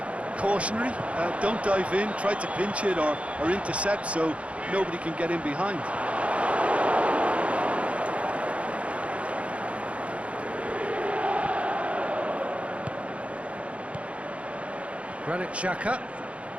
cautionary. Don't dive in, try to pinch it or intercept so nobody can get in behind. Granit Xhaka.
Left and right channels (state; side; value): late; left; 0.063 ms